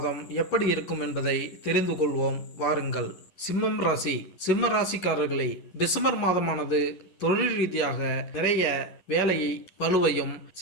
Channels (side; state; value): right; late; 10 ms